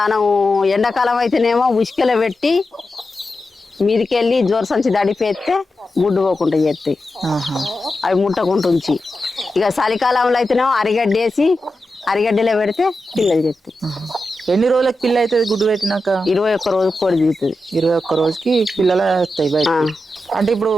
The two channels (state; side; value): normal; both; correlation 0.90